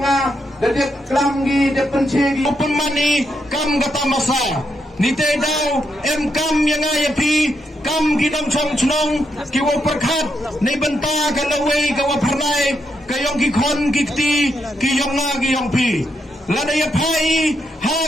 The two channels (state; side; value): normal; both; correlation 0.80